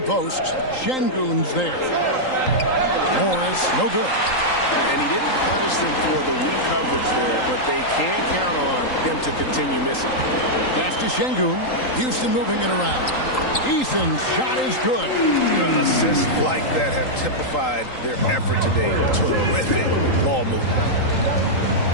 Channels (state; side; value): late; right; 3.8 ms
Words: Şengün's there. Morris, no good. And he didn't punish them for the weak coverage there, but they can count on him to continue missing. Pass to Şengün. Houston moving it around. Eason's shot is good. Assists like that have typified their effort today. Terrific ball movement.